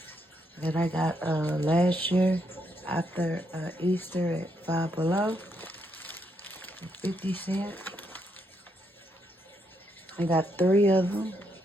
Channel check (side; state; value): both; normal; correlation 0.77